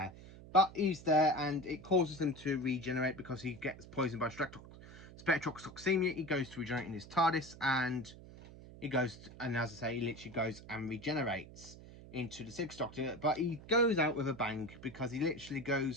But he's there, and it causes him to regenerate because he gets poisoned by spectrotoxemia. He goes to regenerate in his Tardis, and he goes, and as I say, he literally goes and regenerates into the 6th Doctor. But he goes out with a bang because he literally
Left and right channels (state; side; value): noise; right; hum, 17 dB below the sound